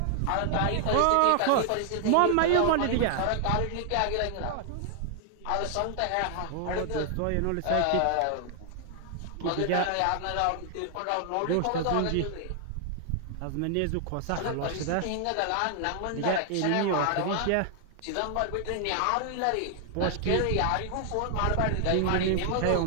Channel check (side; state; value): both; different; correlation 0.00